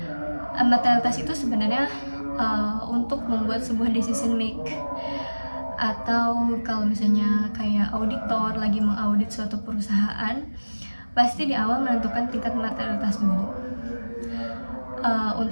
Materialitas itu sebenarnya untuk membuat sebuah decision make, atau kalau misalnya kayak auditor lagi mengaudit suatu perusahaan, pasti di awal menentukan tingkat materialitas dulu.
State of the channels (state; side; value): inverted; both; correlation -1.00